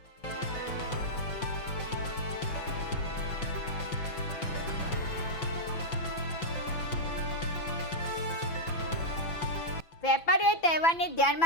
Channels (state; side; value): late; right; 6.0 ms